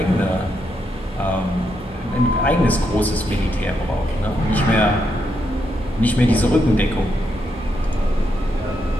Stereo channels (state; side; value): normal; both; correlation 0.80